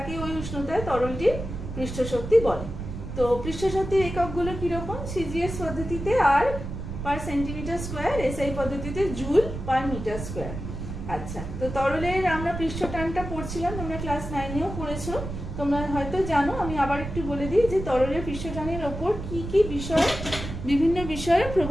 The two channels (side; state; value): right; noise; rumble, 7 dB below the sound